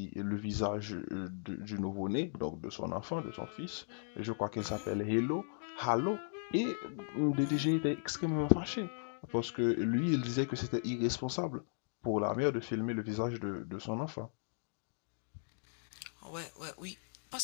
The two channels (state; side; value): silent; right; digital silence